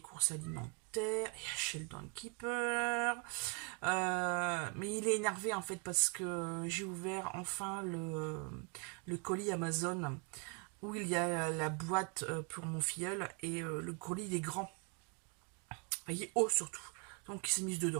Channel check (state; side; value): quieter; left; 35.6 dB